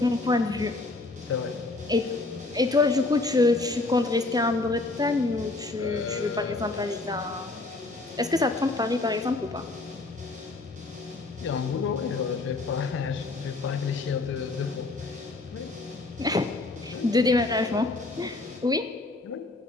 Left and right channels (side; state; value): right; quieter; 3.2 dB